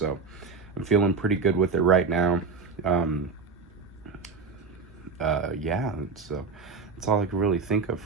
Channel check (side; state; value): left; quieter; 4.8 dB